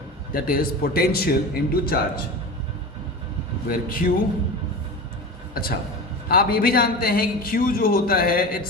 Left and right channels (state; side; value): normal; both; correlation 0.30